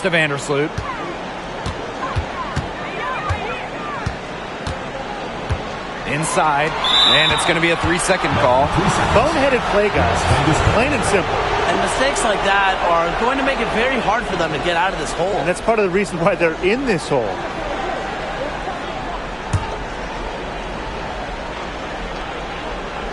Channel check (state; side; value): identical; both; correlation 1.00